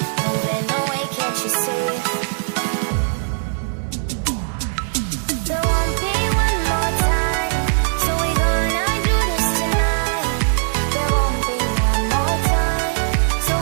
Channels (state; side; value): silent; left; 61 dB below the other